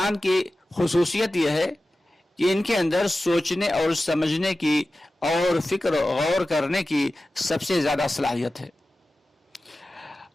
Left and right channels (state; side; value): normal; both; correlation 0.95